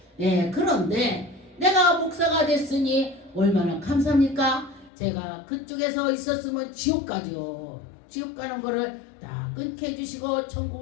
예, 그런데 내가 목사가 됐으니 얼마나 감사합니까? 제가 그쪽에서 있었으면 지옥 가죠. 지옥 가는 거를 다 끊게 해주시고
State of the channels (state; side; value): drops out; right; at 4.9 s